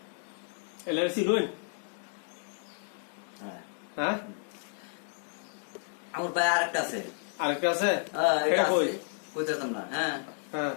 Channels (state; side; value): silent; right; 57 dB below the other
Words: LRC loan? হ্যাঁ, আমার ভাই আরেকটা আছে। আরেকটা আছে? এটা কই কইতাম না। হ্যাঁ হ্যাঁ,